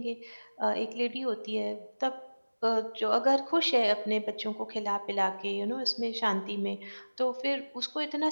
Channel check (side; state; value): both; inverted; correlation -1.00